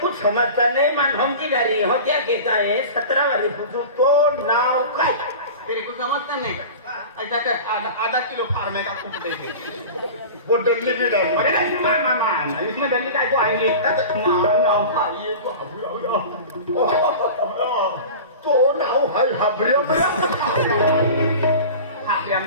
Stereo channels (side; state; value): both; inverted; correlation -0.35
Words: समजता नहीं. मन हम की गाड़ी हो क्या कहता है 17 वाली पूछो तो नाव काय. तेरे को समझता नहीं का? ऐसा कर आधा किलो फार्मे का खूब दे दे. वो डल्ली भी डाली. अरे नहीं मामा इसमें दिल्ली का को आएंगे. मामा नाव खाइए तो नाव हाय हाबरिया